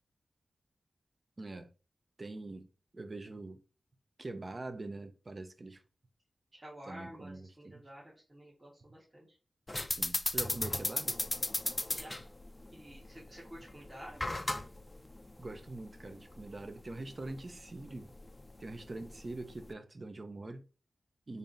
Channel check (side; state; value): both; normal; correlation 0.97